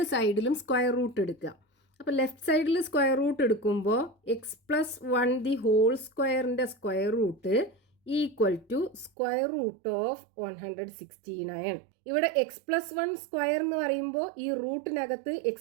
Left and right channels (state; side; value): drops out; left; at 9.1 s